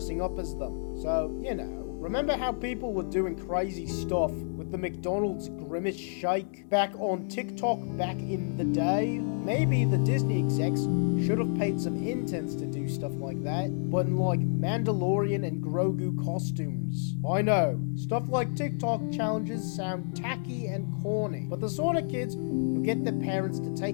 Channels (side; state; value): right; silent; 58 dB below the other